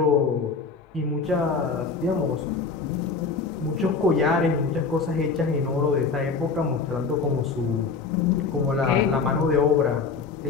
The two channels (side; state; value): right; quieter; 4.8 dB